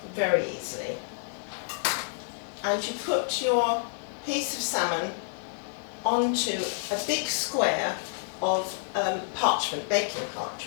very easily. And you put your piece of salmon onto a big square of parchment, baking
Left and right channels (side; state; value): right; silent; digital silence